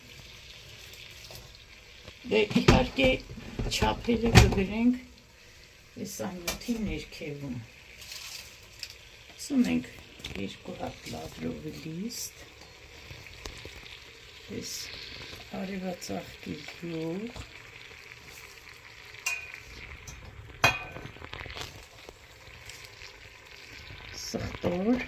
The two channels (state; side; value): identical; both; correlation 1.00